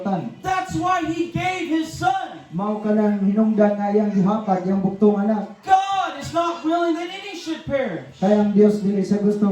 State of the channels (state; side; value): identical; both; correlation 1.00